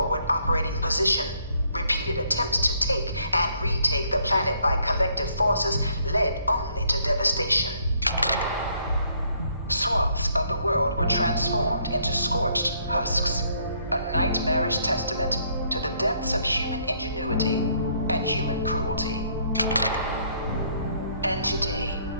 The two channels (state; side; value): inverted; both; correlation -0.68